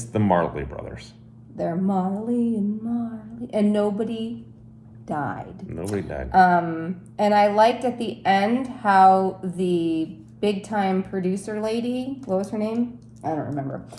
the Marley brothers. They're Marley, and nobody died. Nobody died. And I liked at the end how the big time producer lady, what was her name? I don't remember.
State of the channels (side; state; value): both; identical; correlation 1.00